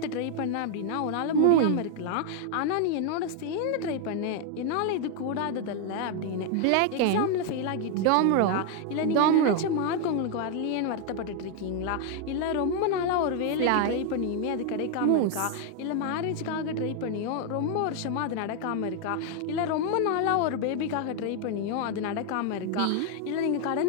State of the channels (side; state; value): both; different; correlation 0.00